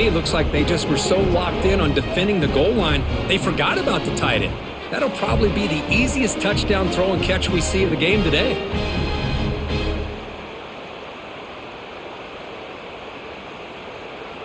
looks like they just were so locked in on defending the goal line, they forgot about the tight end. That'll probably be the easiest touchdown throw and catch we see of the game today.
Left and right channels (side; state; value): both; identical; correlation 1.00